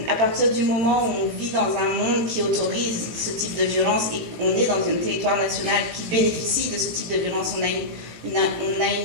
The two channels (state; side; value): late; left; 18 ms